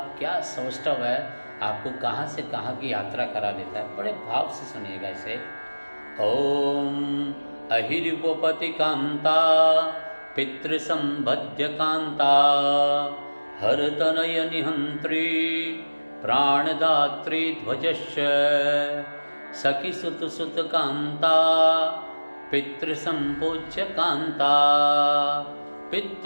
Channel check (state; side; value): inverted; both; correlation -1.00